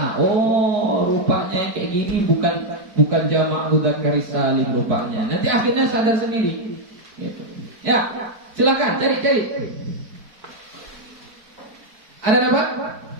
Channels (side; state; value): left; late; 4.6 ms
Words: Rupanya kayak gini bukan jamak mudzakkar salim rupanya. Nanti akhirnya sadar sendiri. Gitu. Ya, silakan cari. Ada apa?